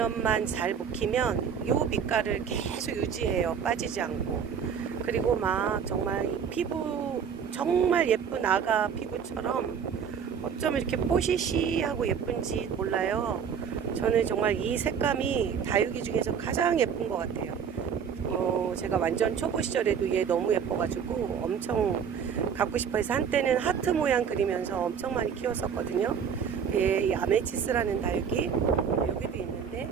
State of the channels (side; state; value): left; quieter; 7.3 dB